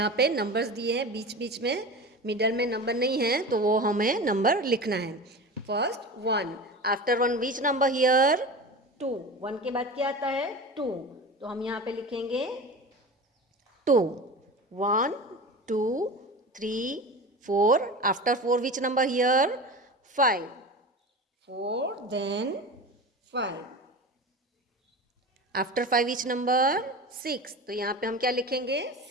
पे नंबर्स दिए हैं, बीच बीच में मिडल में नंबर नहीं है, तो वो हमें नंबर लिखना है। First 1, after 1 which number here? 2। 1 के बाद क्या आता है? 2। तो हम यहाँ पे लिखेंगे 2। 1 2 3 4. After 4 which number here? 5. 4 then 5. After 5 which number? 6. तो यहाँ पे हम क्या लिखेंगे?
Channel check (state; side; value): normal; both; correlation 0.30